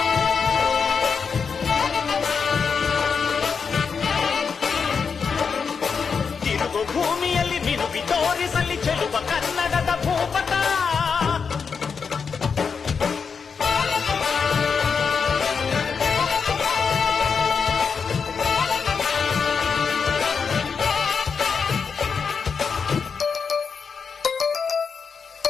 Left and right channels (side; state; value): right; quieter; 5.8 dB